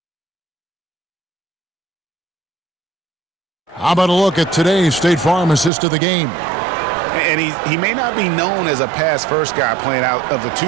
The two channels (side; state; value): left; drops out; at 5.7 s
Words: How about a look at today's State Farm assist of the game? And he may not be known as a pass-first guy playing out of the